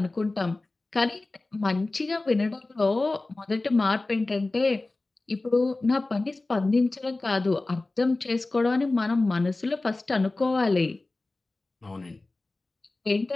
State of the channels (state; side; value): quieter; right; 3.1 dB